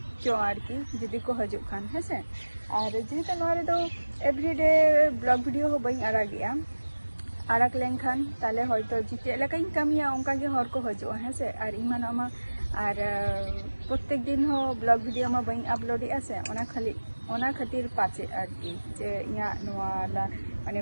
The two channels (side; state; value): both; inverted; correlation -1.00